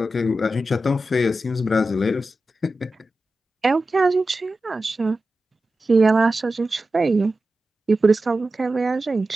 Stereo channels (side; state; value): both; normal; correlation 0.93